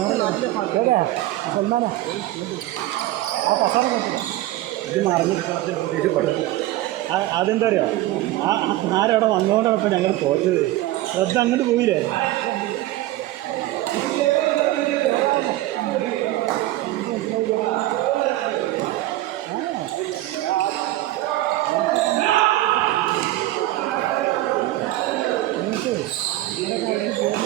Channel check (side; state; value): left; quieter; 16.1 dB